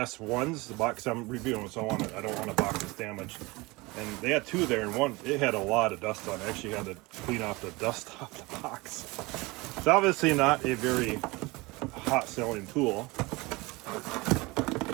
ones, the box I'm reviewing, so I don't want a box that's damaged. And they had 2 there, and one, it had a lot of dust on it. I actually had to clean off the dust off the box. It's obviously not a very hot selling tool. All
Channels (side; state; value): left; quieter; 23.4 dB